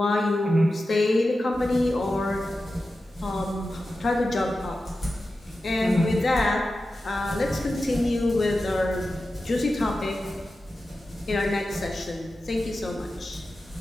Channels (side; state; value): both; normal; correlation 0.93